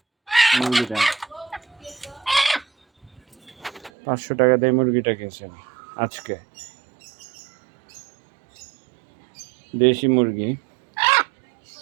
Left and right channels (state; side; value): drops out; left; at 3.9 s